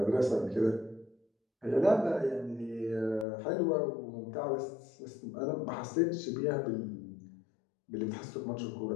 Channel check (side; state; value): right; drops out; at 3.2 s